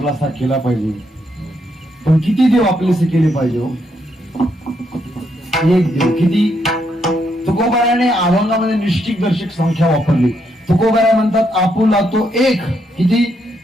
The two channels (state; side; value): normal; both; correlation 0.77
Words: केला पाहिजे, पण किती देव आपलेसे केले पाहिजे हो? एक देव किती? तुकोबाराने अभंगामध्ये निश्चित दर्शक संख्या वापरली. तुकोबारा म्हणतात आपुला तो एक. किती?